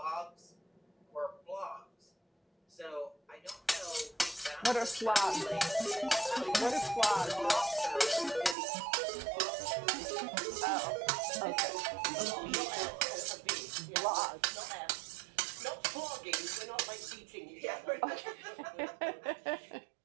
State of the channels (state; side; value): drops out; left; at 8.6 s